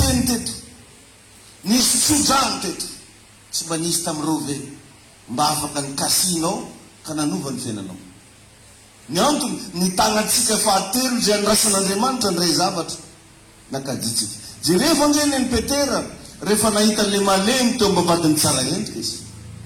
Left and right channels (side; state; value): both; identical; correlation 1.00